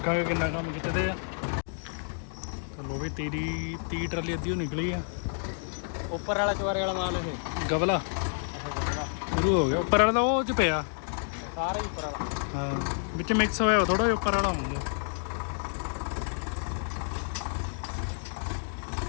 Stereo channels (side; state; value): right; silent; digital silence